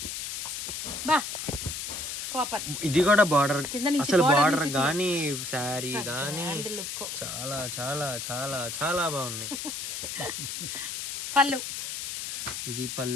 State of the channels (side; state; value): left; noise; hiss, 5 dB below the sound